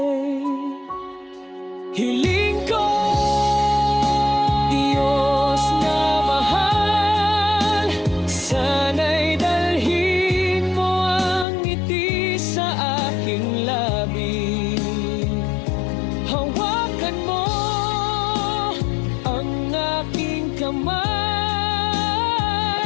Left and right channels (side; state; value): right; drops out; at 11.5 s